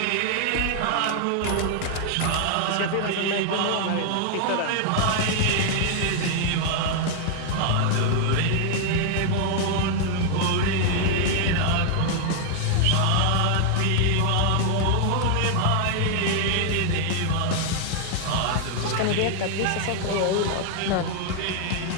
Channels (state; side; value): different; both; correlation 0.00